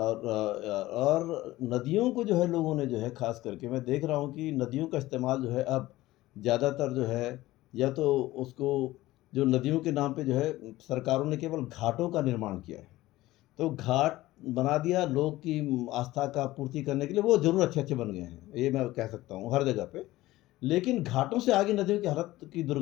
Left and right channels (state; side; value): quieter; right; 17.2 dB